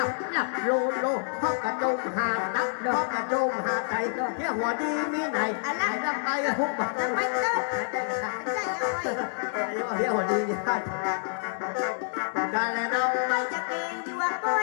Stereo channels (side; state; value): right; silent; digital silence